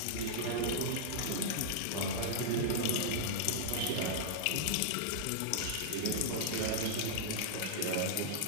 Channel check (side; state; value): both; different; correlation -0.02